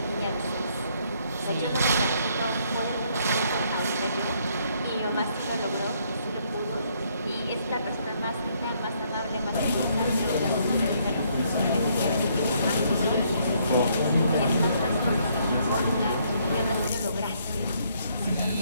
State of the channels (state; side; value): inverted; both; correlation -0.69